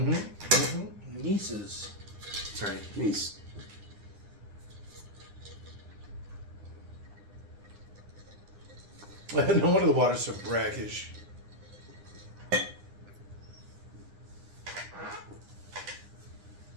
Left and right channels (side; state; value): left; late; 9.8 ms